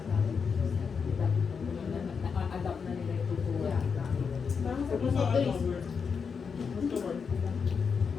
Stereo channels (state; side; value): quieter; right; 5.9 dB